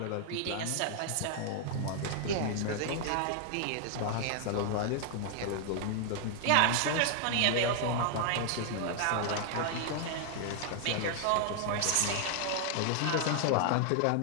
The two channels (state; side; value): different; both; correlation 0.00